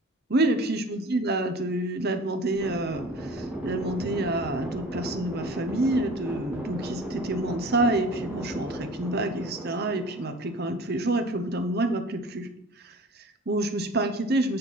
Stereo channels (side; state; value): both; normal; correlation 0.42